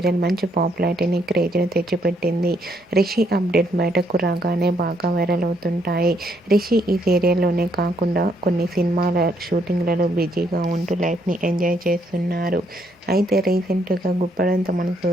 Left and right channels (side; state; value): both; normal; correlation 0.72